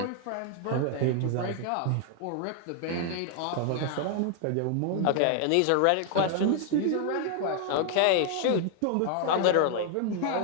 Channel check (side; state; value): both; different; correlation 0.00